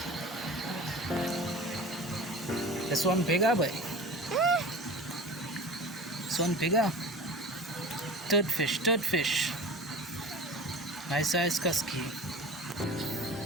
This one bigger, boy. This one bigger. Third fish, third fish. Nice size husky.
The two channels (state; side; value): normal; both; correlation 0.37